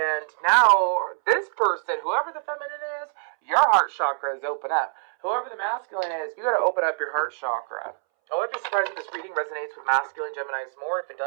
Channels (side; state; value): left; silent; 62 dB below the other